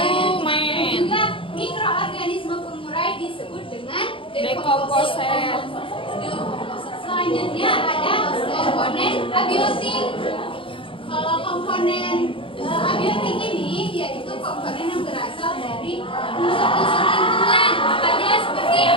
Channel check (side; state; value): right; late; 0.25 ms